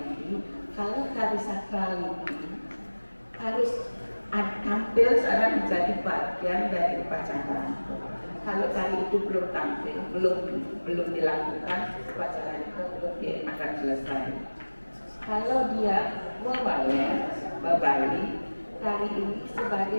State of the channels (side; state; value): both; inverted; correlation -1.00